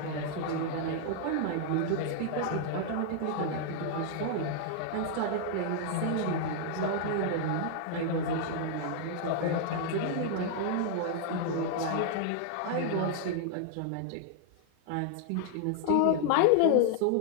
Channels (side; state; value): both; different; correlation -0.01